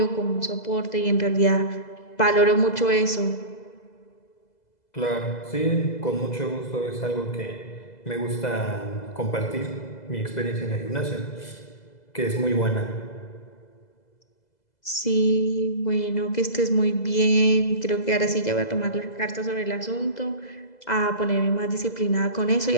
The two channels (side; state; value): right; late; 2.0 ms